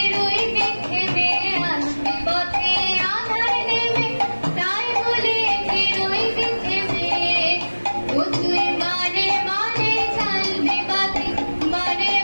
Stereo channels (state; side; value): inverted; both; correlation -1.00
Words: রইবে থেমে। আসবে পথে আধার নেবে তাই বলে কে রইবে থেমে। ও তুই বারে বারে জ্বালবি বাতি, বারে